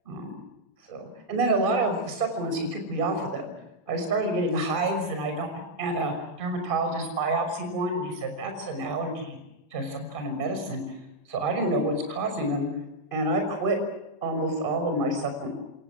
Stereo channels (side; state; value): right; late; 2.5 ms